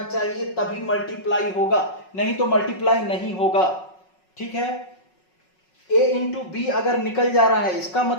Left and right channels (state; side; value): late; right; 5.4 ms